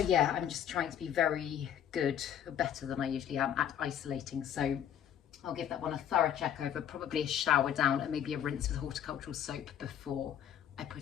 I'm just trying to be very good, better than I usually am at isolating. So I'll give that one a thorough check over, probably a shower down and maybe a rinse with horticultural soap before I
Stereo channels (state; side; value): quieter; right; 9.7 dB